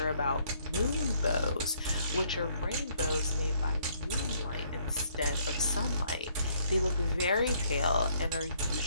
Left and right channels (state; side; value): inverted; both; correlation -0.66